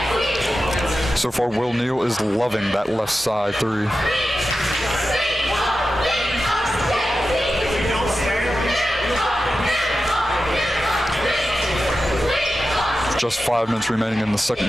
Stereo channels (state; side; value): normal; both; correlation 0.92